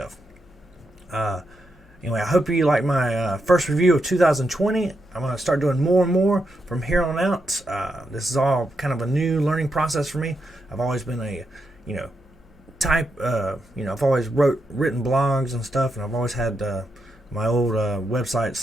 Anyway, I hope you like my first review of 2020. I'm going to start doing more and more from here on out. This is all kind of a new learning process for me. I've always been I've always written blogs and stuff, and I've always had my old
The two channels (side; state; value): both; normal; correlation 0.84